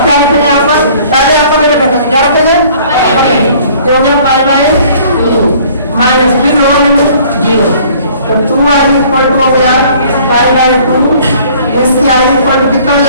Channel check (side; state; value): both; inverted; correlation -0.54